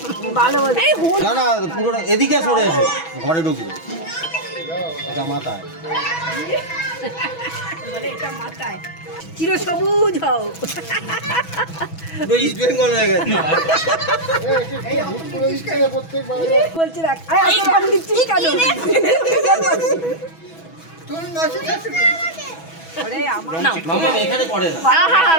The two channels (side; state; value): right; late; 6.1 ms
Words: ভালো বলে না না পুরো এদিকে সরে এসো, ঘরে ঢুকবে। এটা মাথায় বলে এটা মাথায় চির সবুজ হও পুরো ইস্ট বেঙ্গল হয়ে গেছে। বলছি রাখ আমি দিচ্ছি কেন ওরে আমার মামা এখানে করে না। আহা